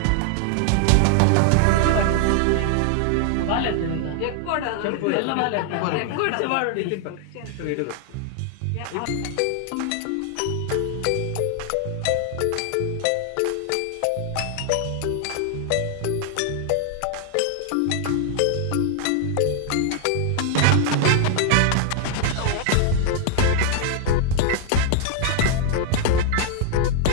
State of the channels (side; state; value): both; different; correlation 0.00